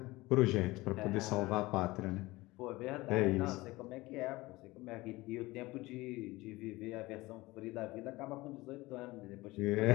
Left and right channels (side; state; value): right; quieter; 20.4 dB